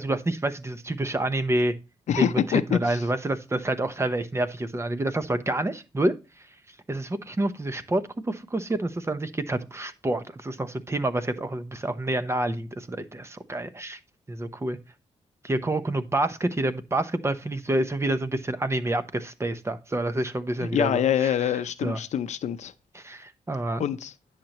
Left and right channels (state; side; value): normal; both; correlation 0.69